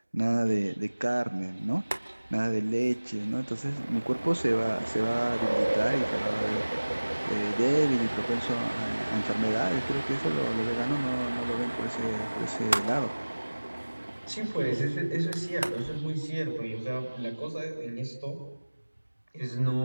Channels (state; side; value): inverted; both; correlation -1.00